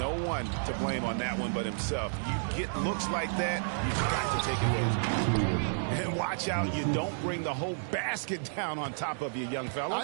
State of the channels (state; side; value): silent; left; digital silence